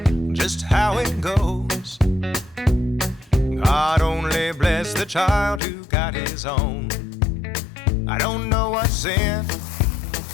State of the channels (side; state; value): right; drops out; at 5.6 s